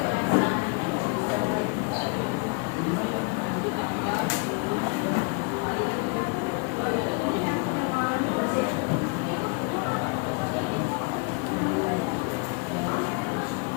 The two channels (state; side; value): quieter; right; 34.1 dB